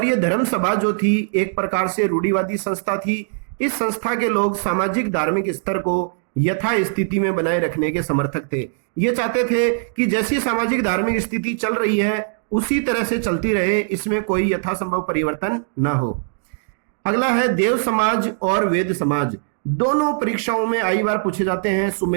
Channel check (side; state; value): left; silent; digital silence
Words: ये धर्म सभा जो थी एक प्रकार से रूढ़िवादी संस्था थी। इस संस्था के लोग सामाजिक धार्मिक स्तर को यथा स्थिति में बनाए रखने के समर्थक थे। ये चाहते थे कि जैसी सामाजिक धार्मिक स्थिति चल रही है उसी तरह से चलती रहे, इसमें कोई यथासंभव परिवर्तन ना हो। अगला है देव समाज और वेद समाज। दोनों परीक्षाओं में आई बार पूछे जाते हैं,